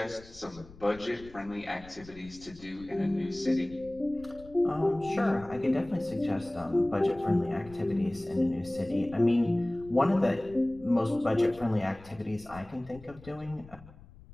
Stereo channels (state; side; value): noise; left; rumble, 20 dB below the sound